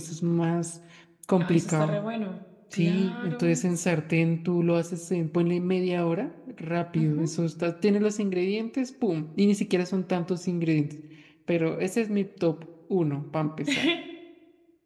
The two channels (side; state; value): both; identical; correlation 1.00